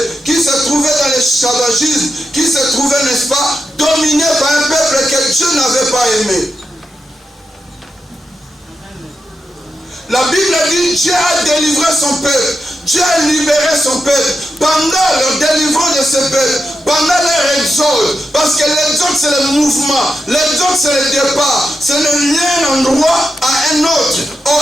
qui se trouvait dans l'esclavagisme, qui se trouvait, n'est-ce pas, dominé par un peuple que Dieu n'avait pas aimé. La Bible dit Dieu a délivré son peuple. Dieu a libéré son peuple. Pendant leur délivrance de ce peuple, pendant leur exode, parce que l'exode c'est le mouvement, l'exode c'est le départ, c'est le lien d'un endroit à un autre.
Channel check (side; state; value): both; normal; correlation 0.88